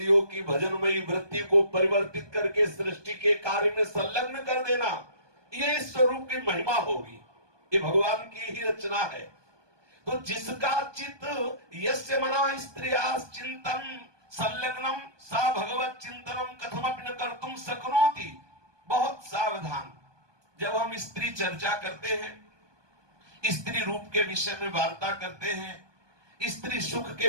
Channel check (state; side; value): late; left; 1.2 ms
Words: की भजनमयी वृत्ति को परिवर्तित करके सृष्टि के कार्य में संलग्न कर देना, ये इस स्वरूप की महिमा होगी, ये भगवान की ही रचना है। तो जिसका चित्त यस्य मना स्त्रिया चिंतन संलग्नम सा भगवत चिंतनम कथमपि न कर्तुम शक्नोति। बहुत सावधान, जब हम स्त्री चर्चा करते हैं, स्त्री रूप के विषय में वार्ता करते हैं, स्त्री सुख के